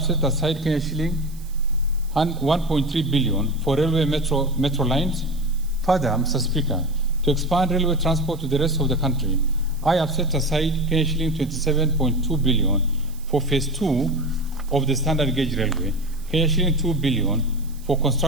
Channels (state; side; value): noise; right; hiss, 23 dB below the sound